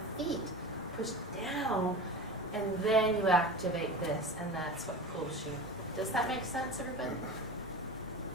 feet. Push down, and then you activate this, and that's what pulls you. Does that make sense, everybody?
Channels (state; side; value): normal; both; correlation 0.31